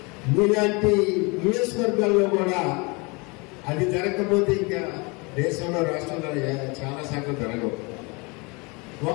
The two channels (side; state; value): right; quieter; 28.4 dB